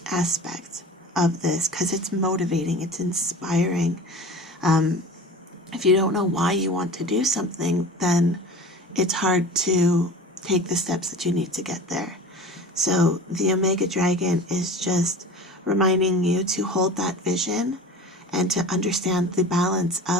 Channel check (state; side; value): normal; both; correlation 0.37